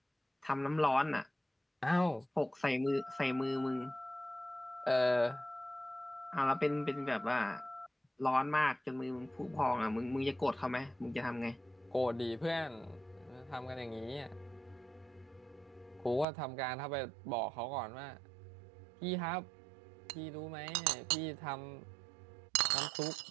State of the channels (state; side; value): drops out; left; at 16.2 s